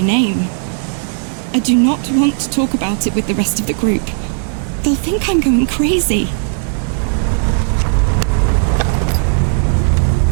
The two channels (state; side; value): silent; left; digital silence